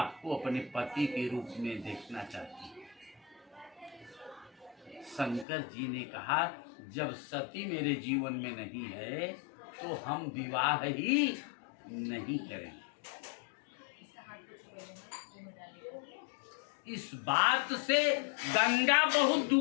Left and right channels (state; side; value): drops out; right; at 5.5 s